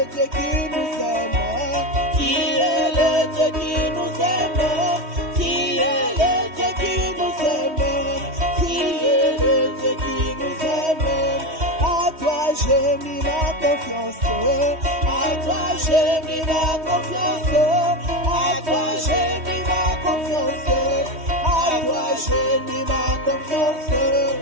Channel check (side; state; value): left; late; 3.1 ms